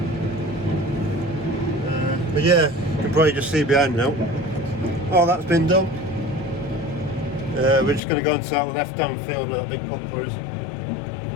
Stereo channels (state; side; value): drops out; right; at 8.0 s